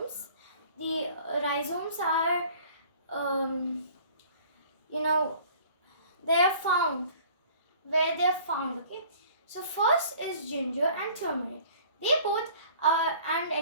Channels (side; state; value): both; inverted; correlation -0.50